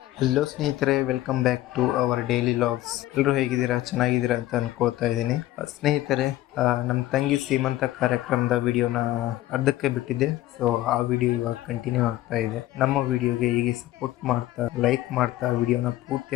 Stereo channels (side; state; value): right; quieter; 15.4 dB